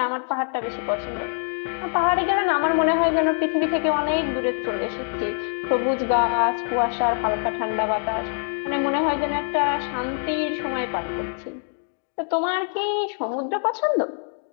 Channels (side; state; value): right; silent; 62 dB below the other